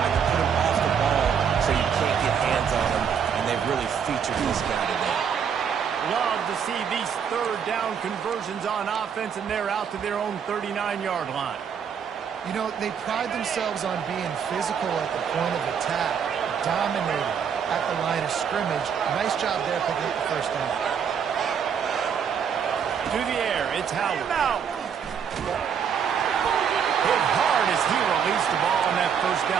I can put him off the ball so you can't get hands on him, and they've really featured this guy today. Love to see these third down conversions on offense, and they're out to their own 39-yard line. You know, they pride themselves on being physical at the point of attack, dominating at the line of scrimmage. Nice job there picking up the first down. To the air, it's Howard. Hit hard as he released the ball on that first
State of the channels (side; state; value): left; quieter; 7.4 dB